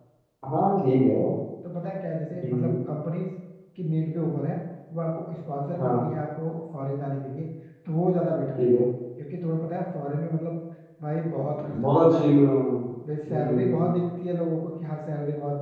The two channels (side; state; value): both; identical; correlation 1.00